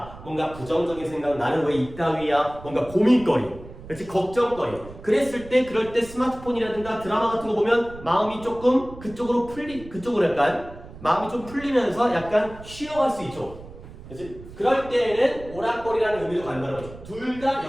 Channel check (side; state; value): right; noise; rumble, 16 dB below the sound